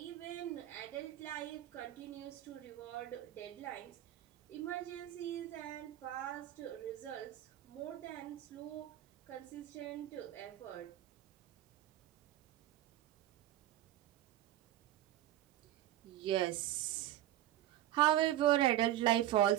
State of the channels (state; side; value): quieter; left; 13.6 dB